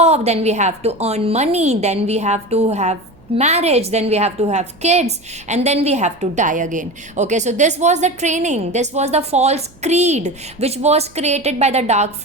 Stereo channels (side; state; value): right; noise; hum, 28 dB below the sound